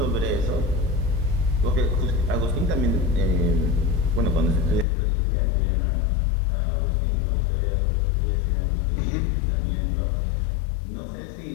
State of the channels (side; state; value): right; drops out; at 4.9 s